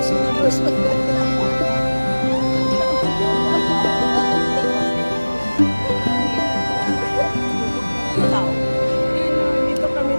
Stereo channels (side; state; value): both; inverted; correlation -1.00